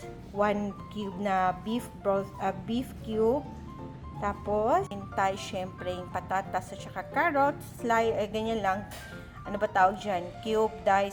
1 cube na beef cube. Tapos, hintay, syempre, yung patatas at saka carrots. Ganyan lang. Ano ba tawag dyan? Cube,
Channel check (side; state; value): both; identical; correlation 1.00